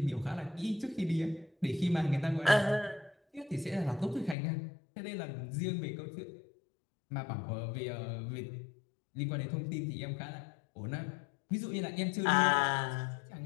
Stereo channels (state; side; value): drops out; right; at 4.4 s